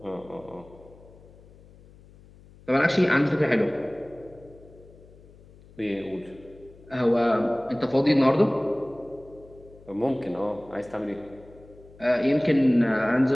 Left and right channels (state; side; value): noise; left; hum, 24 dB below the sound